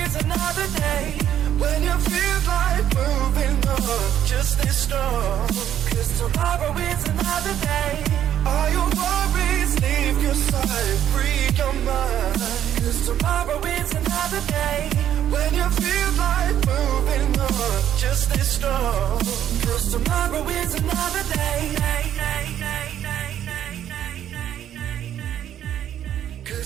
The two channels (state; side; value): quieter; left; 10.6 dB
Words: another day. When you feel like moving on, just stay strong. 'Cause tomorrow is another day. All your worries, leave your side, free your mind. 'Cause tomorrow is another day. When you feel like moving on, just stay strong. 'Cause tomorrow is another day.